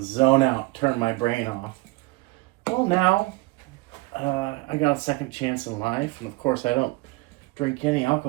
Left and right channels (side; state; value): left; quieter; 22.3 dB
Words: zone out, turn my brain off. Well, now I got a second chance in life, and of course I don't drink any